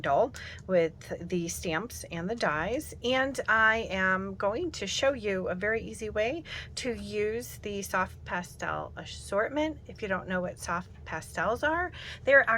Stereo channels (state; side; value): identical; both; correlation 1.00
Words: with the stamps and the dies, and I am going to show you a very easy way to use the soft pastel assortment. If you don't know what soft pastels are, they're